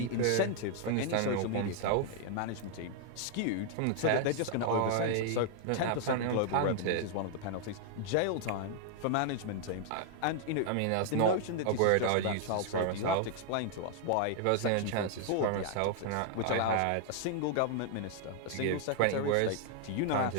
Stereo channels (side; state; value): both; different; correlation 0.00